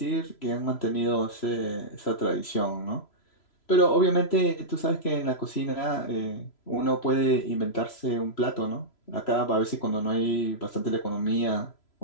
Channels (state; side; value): late; right; 3.0 ms